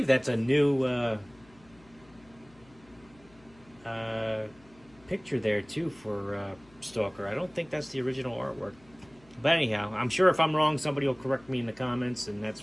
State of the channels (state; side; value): noise; left; hum, 28 dB below the sound